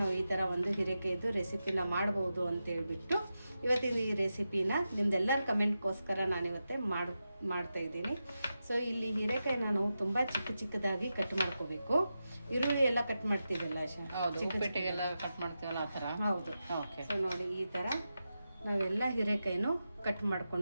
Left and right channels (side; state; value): both; inverted; correlation -0.90